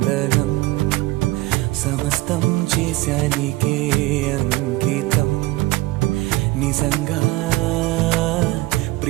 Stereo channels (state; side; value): quieter; left; 19.2 dB